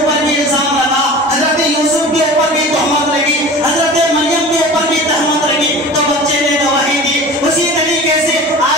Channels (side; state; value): both; normal; correlation 0.37